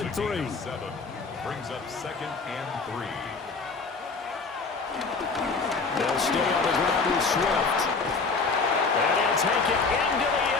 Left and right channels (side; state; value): right; quieter; 4.4 dB